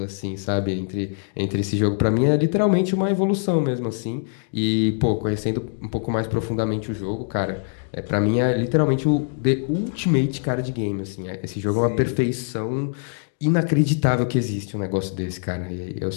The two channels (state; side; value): silent; right; digital silence